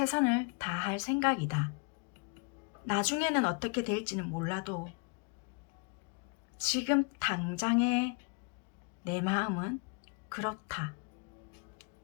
다할 생각이다. 나중에는 어떻게 될지는 몰라도 지금 당장의 내 마음은 그렇다.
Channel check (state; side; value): quieter; right; 34.6 dB